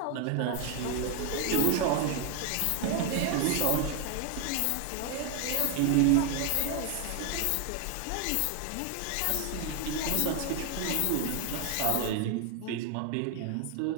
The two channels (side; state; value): both; different; correlation 0.01